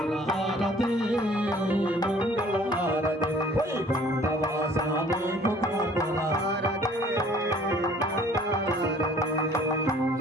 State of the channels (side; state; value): both; normal; correlation 0.54